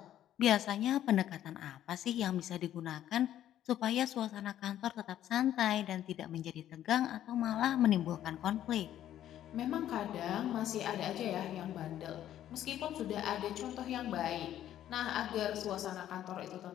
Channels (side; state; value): right; quieter; 11.8 dB